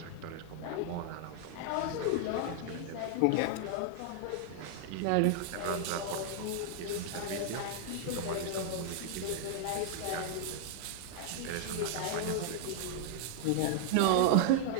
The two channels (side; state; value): both; different; correlation 0.00